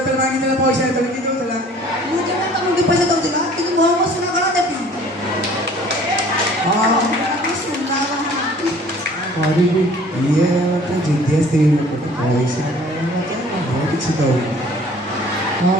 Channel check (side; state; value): both; normal; correlation 0.52